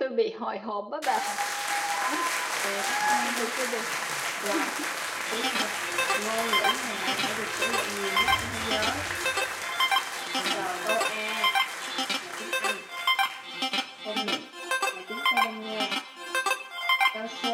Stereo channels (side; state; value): both; identical; correlation 1.00